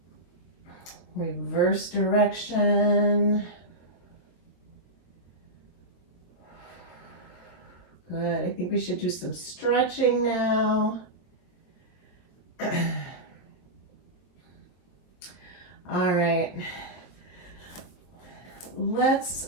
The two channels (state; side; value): late; right; 23 ms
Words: Reverse direction. Good. I think we should do some stretching now. All right. Let's